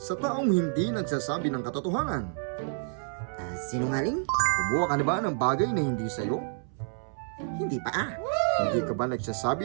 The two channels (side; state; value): left; silent; 59 dB below the other